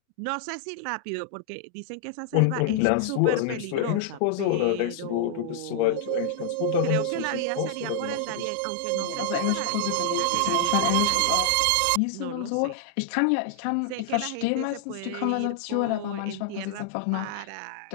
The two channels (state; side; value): different; both; correlation 0.00